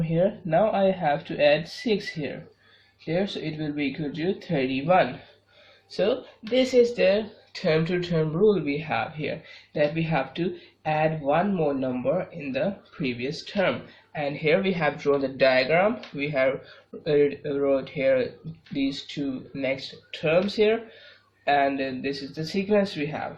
here, now I have to add 6 here, so it will be equal to 31. So this is the term to term rule we have here, that we have to add one more number in the previous term. And here we have drawn the diagram. We have wrote here these two next terms here, and this is the sequence we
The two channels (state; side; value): identical; both; correlation 1.00